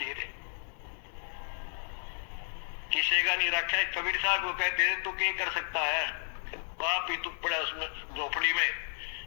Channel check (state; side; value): silent; right; 56 dB below the other